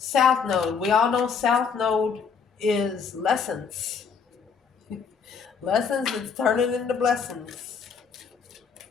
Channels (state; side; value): quieter; right; 6.0 dB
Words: Node. We all know South Node is lessons. Lessons that's turning into blessings.